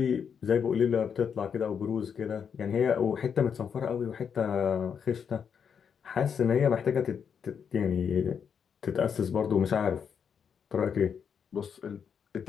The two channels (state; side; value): quieter; right; 7.1 dB